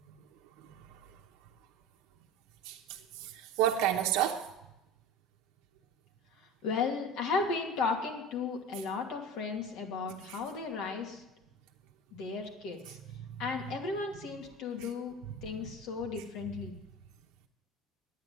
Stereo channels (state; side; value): normal; both; correlation 0.31